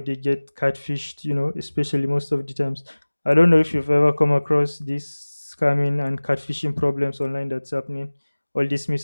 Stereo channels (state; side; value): inverted; both; correlation -1.00